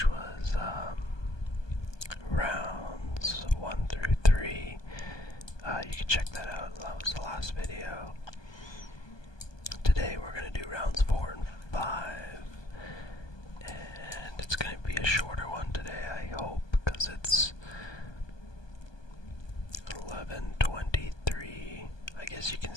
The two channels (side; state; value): right; late; 1.2 ms